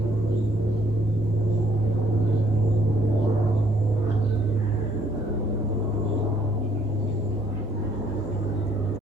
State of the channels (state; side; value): normal; both; correlation 0.65